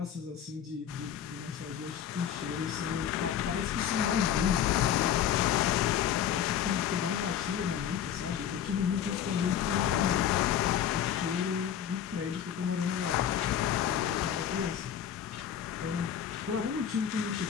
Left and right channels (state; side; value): quieter; right; 9.5 dB